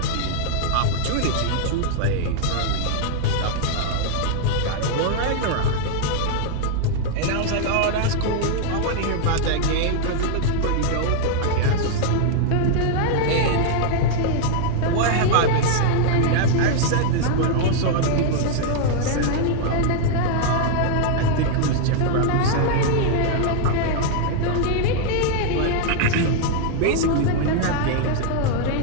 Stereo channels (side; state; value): both; different; correlation -0.01